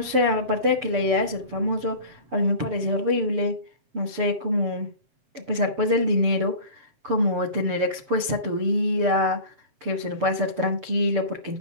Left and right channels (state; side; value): late; left; 7.0 ms